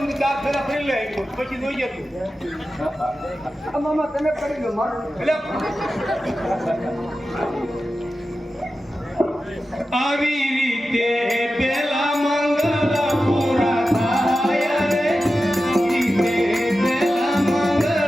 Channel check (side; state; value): both; normal; correlation 0.93